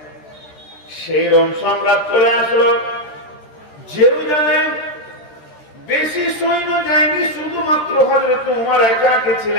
সেই রোম সম্রাট চলে আসলো জেরুজালেম। বেশি সৈন্য যায়নি, শুধুমাত্র হযরত ওমর একা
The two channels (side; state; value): right; late; 13 ms